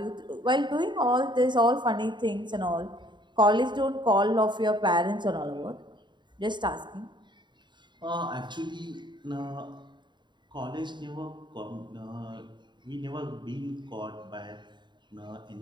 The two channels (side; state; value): left; late; 0.22 ms